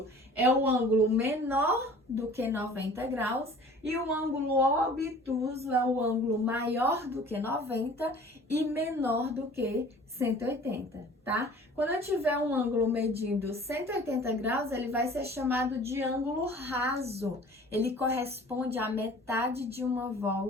é o ângulo menor do que 90 graus e o ângulo obtuso é o ângulo maior do que 90 e menor do que 180, tá? Quando eu tiver um ângulo medindo 180 graus, ele vai ser chamado de ângulo raso. Ele corresponde à metade de uma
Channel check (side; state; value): both; normal; correlation 0.47